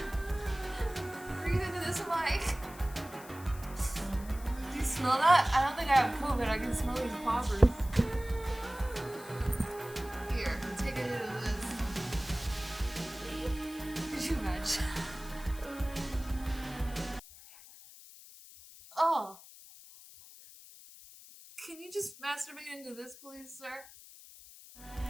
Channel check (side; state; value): left; noise; hiss, 18 dB below the sound